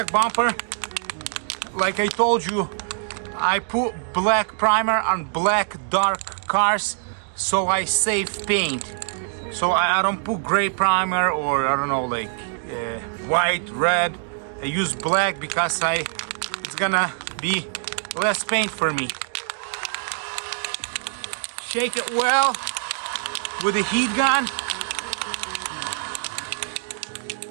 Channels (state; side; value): silent; left; digital silence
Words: bumper. Like I told you, I put black primer on black dark cars so I save paint. So I don't put gray primer or I don't know, like white, red. I use black because it's gonna be less paint for me. Shake it well with a heat gun.